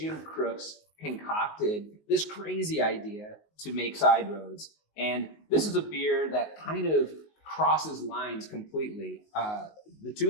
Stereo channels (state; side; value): late; right; 19 ms